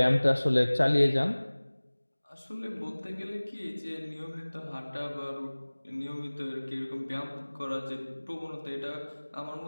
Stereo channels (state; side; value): inverted; both; correlation -1.00